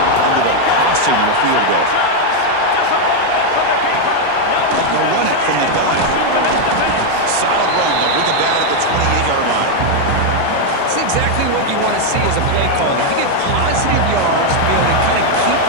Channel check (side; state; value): both; different; correlation 0.01